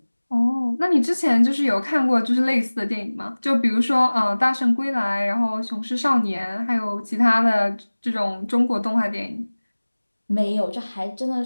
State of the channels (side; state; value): both; inverted; correlation -1.00